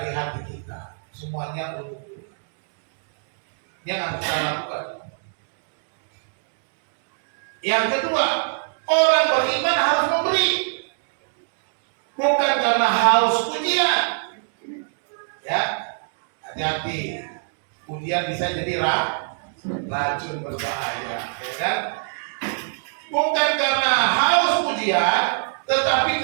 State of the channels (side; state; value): left; silent; digital silence